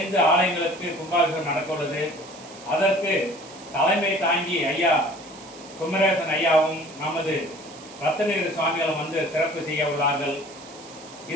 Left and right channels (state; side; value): noise; right; hiss, 19 dB below the sound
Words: ஆலயங்களுக்கு கும்பாபிஷேகம் நடக்கவுள்ளது. அதற்கு தலைமை தாங்கி ஐயா குமரேசன் ஐயாவும் நமது ரத்னகிரி சுவாமிகளும் வந்து சிறப்பு செய்ய உள்ளார்கள்.